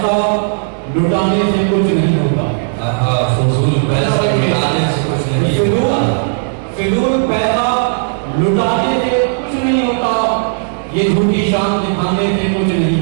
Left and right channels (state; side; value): silent; left; digital silence